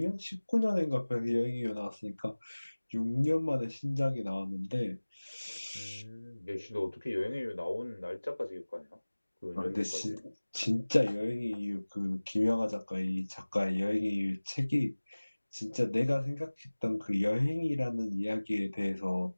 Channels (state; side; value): inverted; both; correlation -1.00